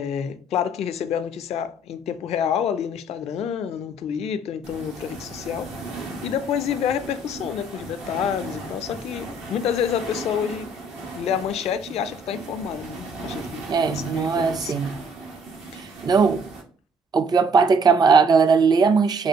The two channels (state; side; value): normal; both; correlation 0.61